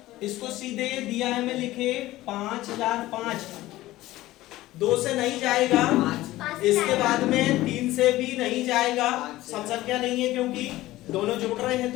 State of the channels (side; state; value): right; quieter; 16.8 dB